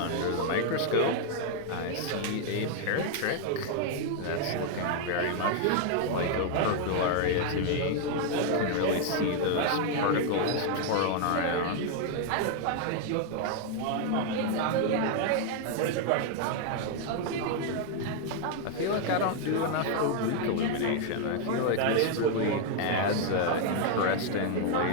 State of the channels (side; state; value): both; different; correlation 0.00